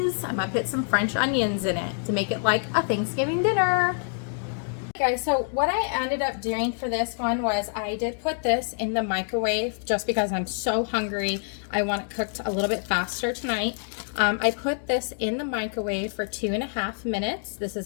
I'm gonna put some French onions in it to make it like a Thanksgiving dinner. Guys, so what I ended up doing for this one was I did put this in the microwave just because I'm so hungry. I want it cooked a little bit faster tonight. I put this in the microwave for 2.5 minutes. This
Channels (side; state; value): right; silent; 61 dB below the other